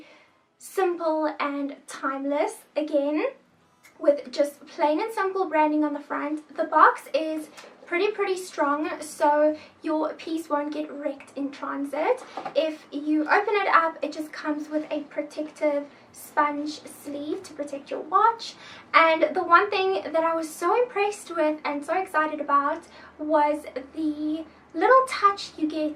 simple and timeless, again, with just plain and simple branding on the front. The box is pretty strong, so your piece won't get wrecked in transit. If you open it up, it just comes with a protective sponge sleeve to protect your watch. And the one thing that I was so impressed with and so excited about was the little touch you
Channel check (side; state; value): both; identical; correlation 1.00